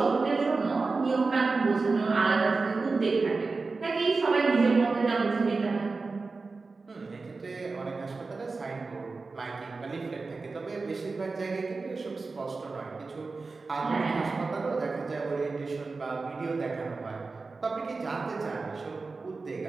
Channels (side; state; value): left; quieter; 4.0 dB